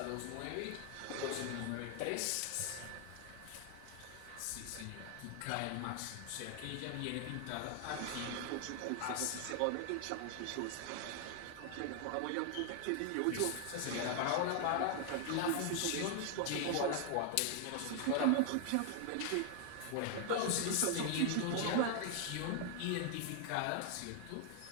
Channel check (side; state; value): both; different; correlation 0.00